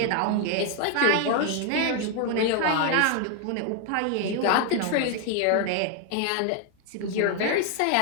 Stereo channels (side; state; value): both; different; correlation 0.01